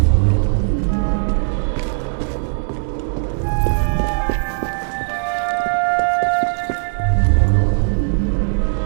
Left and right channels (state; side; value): silent; left; digital silence